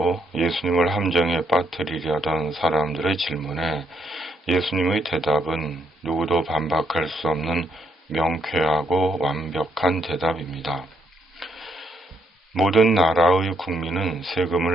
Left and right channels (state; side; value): normal; both; correlation 0.75